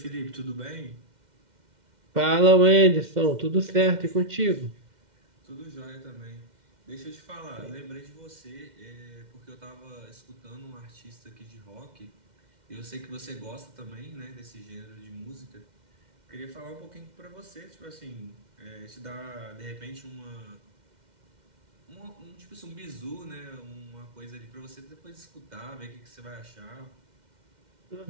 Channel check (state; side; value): late; left; 2.1 ms